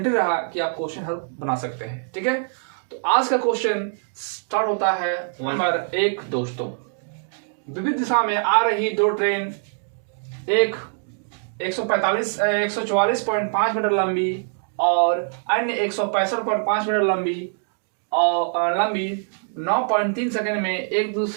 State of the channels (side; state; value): left; silent; digital silence